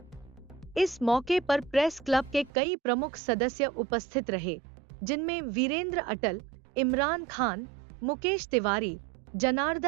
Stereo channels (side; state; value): left; drops out; at 2.5 s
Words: इस मौके पर प्रेस क्लब के कई प्रमुख सदस्य उपस्थित रहे, जिनमें वीरेंद्र अटल, इमरान खान, मुकेश तिवारी,